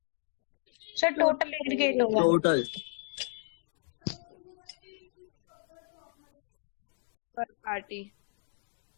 एग्रीगेट होता है? सर टोटल एग्रीगेट होगा। टोटल आंसर इज पर पार्टी। पार्टी।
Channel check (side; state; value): right; silent; digital silence